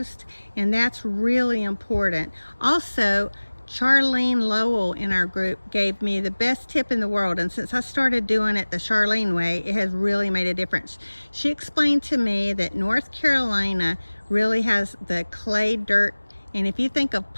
and that's really important. Also, Charlene Lowell in our group gave me the best tip in the world, and since I started doing it the Charlene way, it has really made a difference. She explained to me that North Carolina really has the clay dirt, and if you think of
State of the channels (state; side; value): inverted; both; correlation -1.00